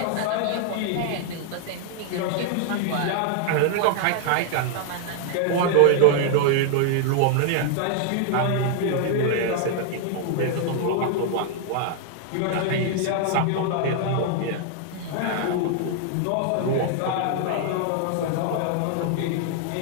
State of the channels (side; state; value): both; different; correlation 0.00